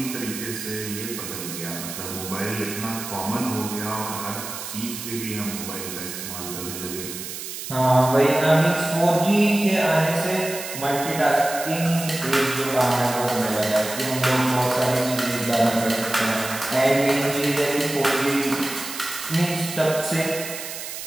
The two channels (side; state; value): right; noise; hiss, 8 dB below the sound